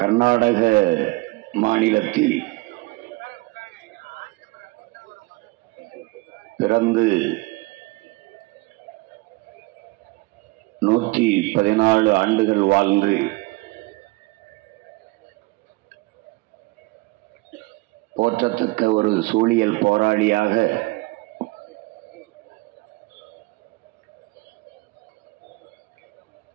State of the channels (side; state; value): left; quieter; 23.1 dB